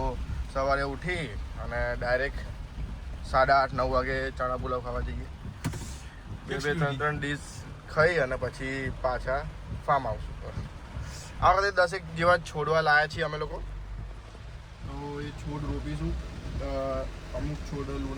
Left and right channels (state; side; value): identical; both; correlation 1.00